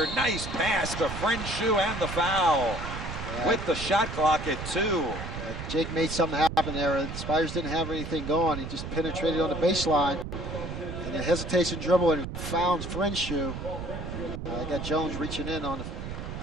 nice pass to Frenshu and the foul. With the shot clock at 2. Jake made something happen there. The Spiders didn't have anything going. He just penetrated on the baseline. And a hesitation dribble and found Frenshu. I got Jones reaching in on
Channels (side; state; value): right; noise; rumble, 7 dB below the sound